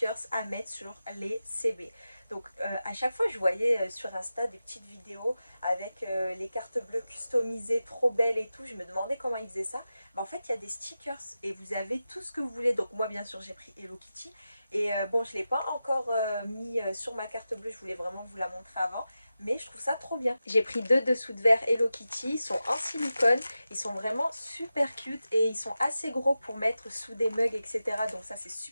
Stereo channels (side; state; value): both; inverted; correlation -0.92